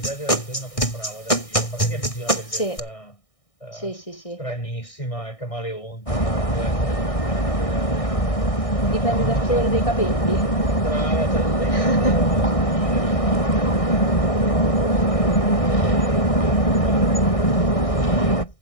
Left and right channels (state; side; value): late; right; 1.6 ms